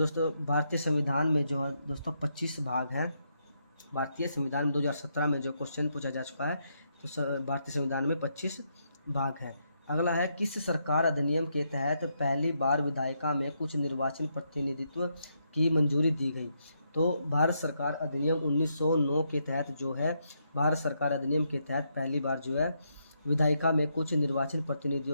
भारतीय संविधान में जो है दोस्तों 25 भाग हैं। भारतीय संविधान में 2017 में जो क्वेश्चन पूछा जा चुका है, तो भारतीय संविधान में 25 भाग है। अगला है किस सरकार अधिनियम के तहत पहली बार विधायिका में कुछ निर्वाचन प्रतिनिधित्व की मंजूरी दी गई? तो भारत सरकार अधिनियम 1909 के तहत जो है भारत सरकार अधिनियम के तहत पहली बार जो है विधायिका में कुछ निर्वाचन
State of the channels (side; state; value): both; inverted; correlation -0.79